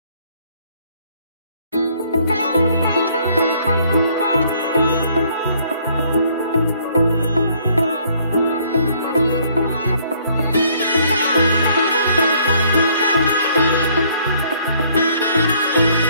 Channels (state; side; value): inverted; both; correlation -0.63